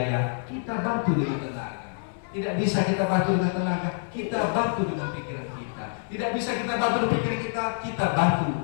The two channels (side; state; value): right; silent; 60 dB below the other